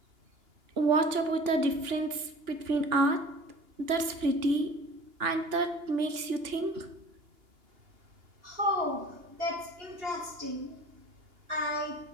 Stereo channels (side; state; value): left; late; 2.9 ms